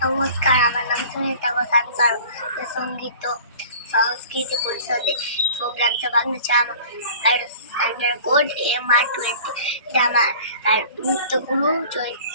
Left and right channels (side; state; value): both; inverted; correlation -0.45